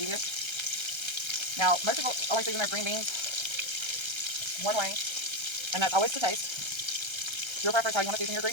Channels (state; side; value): late; left; 1.3 ms